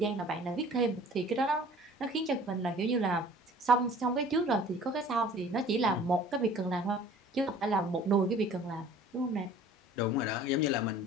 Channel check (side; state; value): both; normal; correlation 0.48